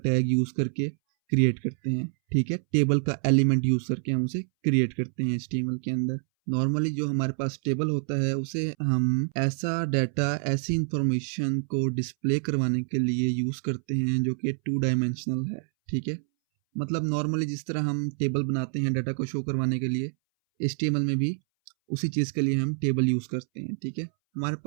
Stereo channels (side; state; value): left; silent; 60 dB below the other